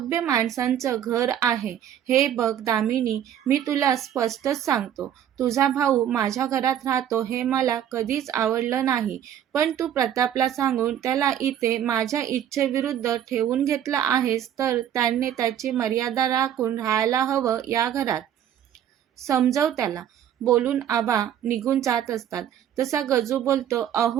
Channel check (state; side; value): quieter; left; 10.1 dB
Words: माणसांचं घर आहे. हे बघ दामिनी, मी तुला स्पष्टच सांगतो. तुझा भाऊ माझ्या घरात राहतो हे मला कधीच आवडलं नाही. पण तू प्रतापला सांगून त्याला इथे माझ्या इच्छेविरुद्ध ठेवून घेतलं आहेस, तर त्याने त्याची मर्यादा राखून राहायला हवं या घरात. समजव त्याला. बोलून आबा निघून जात असतात. तसा गजू बोलतो,